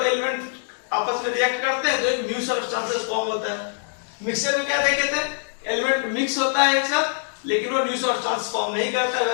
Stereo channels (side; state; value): right; silent; digital silence